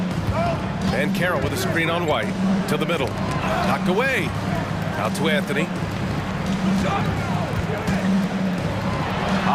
And Carroll with a screen on White to the middle. Knocked away. Out to Anthony.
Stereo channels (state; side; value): identical; both; correlation 1.00